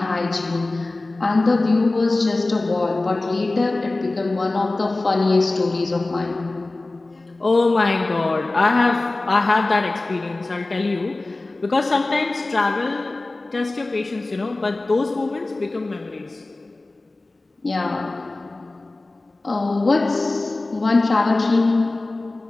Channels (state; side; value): quieter; right; 3.0 dB